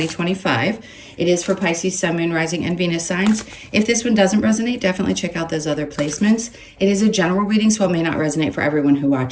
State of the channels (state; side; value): identical; both; correlation 1.00